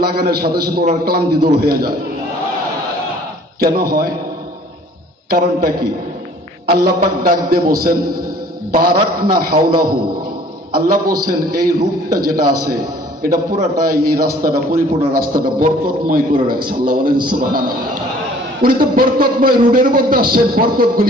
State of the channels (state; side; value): normal; both; correlation 0.53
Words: লাগানোর সাথে সাথে ওনার ক্লান্তি দূর হয়ে যায়। কেন হয়? কারণটা কি? আল্লাহ পাক ডাক দিয়ে বলছেন বারাকনা হাওলাহু। আল্লাহ বলছেন এই রূপটা যেটা আছে, এটা পুরাটাই, এই রাস্তাটা, পরিপূর্ণ রাস্তাটা বরকতময় করে রাখছে। আল্লাহ বলেন সুবহানাল্লাহ। উনি তো বরকতময় রোডের মধ্যে আসছেন,